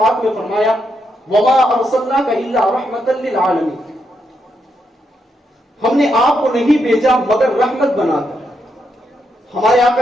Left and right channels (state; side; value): normal; both; correlation 0.80